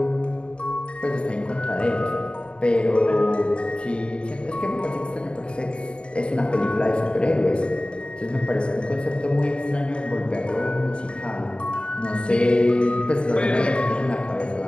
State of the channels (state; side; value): late; right; 0.055 ms